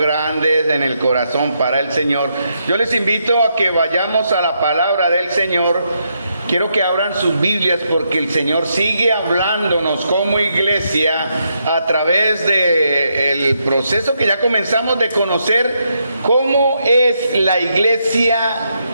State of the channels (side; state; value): both; inverted; correlation -0.79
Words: en el corazón para el Señor, yo les invito a que vayamos a la palabra del Señor. Quiero que abran sus Biblias porque el Señor sigue hablándonos como iglesia a través del proceso que ya comenzamos de conocer cómo es la iglesia